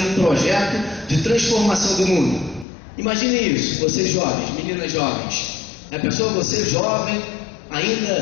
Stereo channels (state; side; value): drops out; right; at 2.7 s